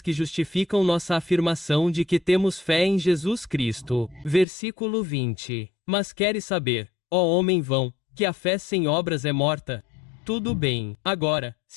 que justificam nossa afirmação de que temos fé em Jesus Cristo. Versículo 20. Mas queres saber, ó homem vão, que a fé sem obras é morta? Tudo bem. Agora,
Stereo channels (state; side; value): drops out; right; at 4.5 s